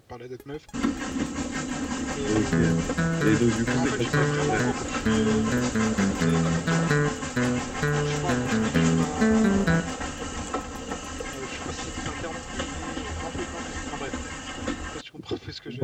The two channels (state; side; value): identical; both; correlation 1.00